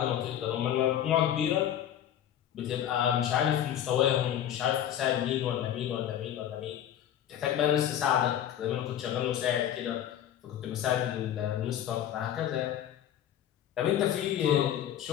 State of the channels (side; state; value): right; quieter; 10.7 dB